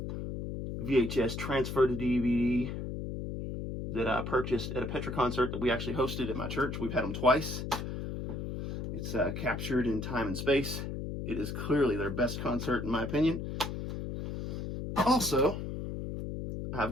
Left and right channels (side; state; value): left; noise; hum, 5 dB below the sound